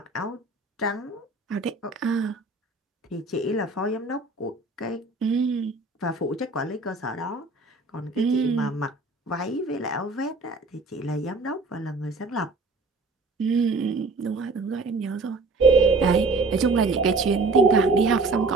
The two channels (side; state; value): left; quieter; 3.5 dB